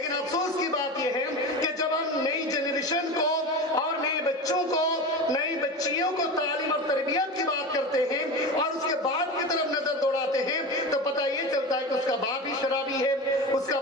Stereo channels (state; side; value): normal; both; correlation 0.27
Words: افسوس کی بات یہ ہے کہ جب ہم نئی جنریشن کو اور نئے بچوں کو، نئی بچیوں کو تعلیم اور تربیت کی بات کرتے ہیں اور اس کے باپ کی طرف نظر دوڑاتے ہیں تو پتہ یہ چلتا ہے کہ اس کا باپ بھی شرابی ہے، اس کا